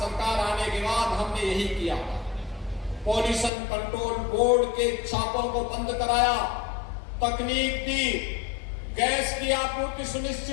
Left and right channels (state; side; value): drops out; right; at 3.5 s